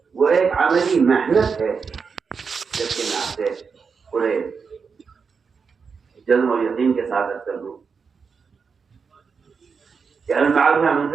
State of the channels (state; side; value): quieter; left; 5.6 dB